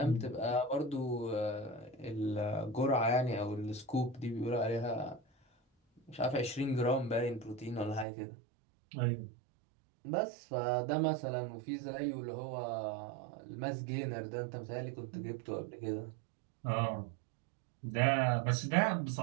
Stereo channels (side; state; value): left; drops out; at 8.1 s